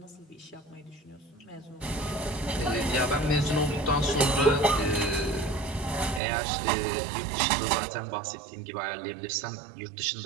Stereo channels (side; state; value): left; drops out; at 6.2 s